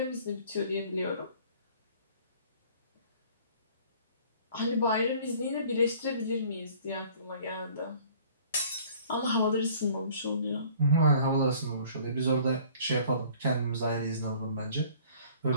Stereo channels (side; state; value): both; inverted; correlation -0.52